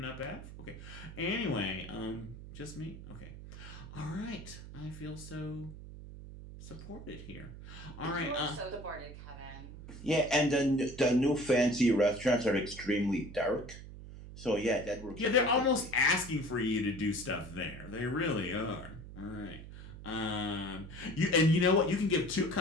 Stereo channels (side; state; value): right; noise; hum, 13 dB below the sound